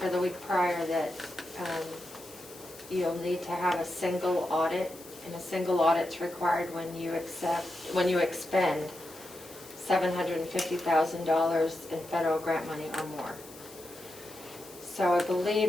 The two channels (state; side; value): noise; left; hiss, 19 dB below the sound